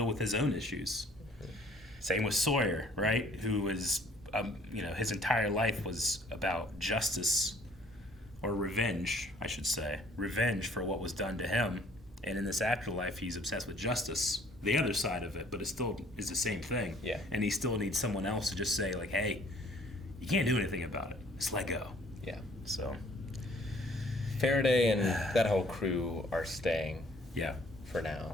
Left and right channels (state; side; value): normal; both; correlation 0.58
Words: with his own issues. Same with Sawyer, right? Who was, his entire life was about justice, or revenge, I should say. Revenge for what was done to him. And in this afterlife, he's obsessed with justice, the other side of it, but it still is the same thing. Yeah. And he still needs someone else to just say, like, hey, you can't do anything about it. Just let go. Yeah. So. Faraday and that whole crew are staying. Yeah. For